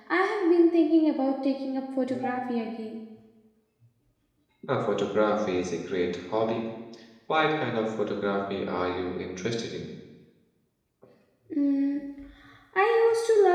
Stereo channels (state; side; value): identical; both; correlation 1.00